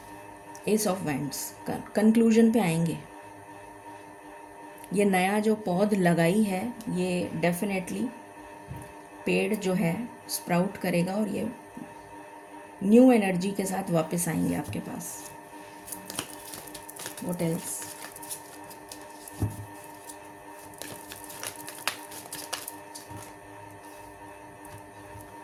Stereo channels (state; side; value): identical; both; correlation 1.00